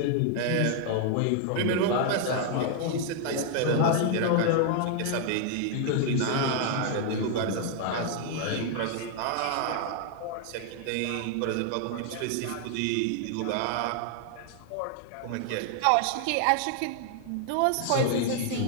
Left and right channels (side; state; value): both; different; correlation 0.00